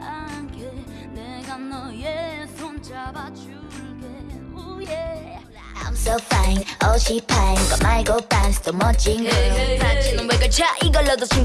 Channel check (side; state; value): both; identical; correlation 1.00